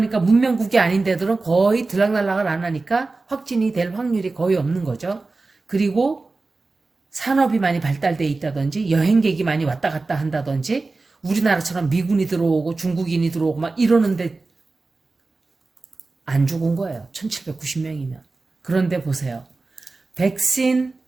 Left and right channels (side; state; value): left; quieter; 3.6 dB